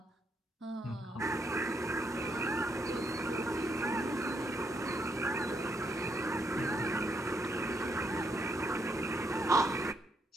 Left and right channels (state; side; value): normal; both; correlation 0.76